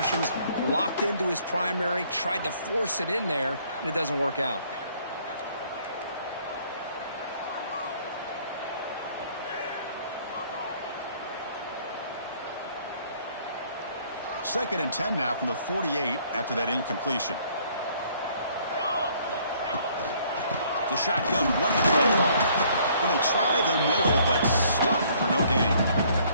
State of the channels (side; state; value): both; inverted; correlation -0.61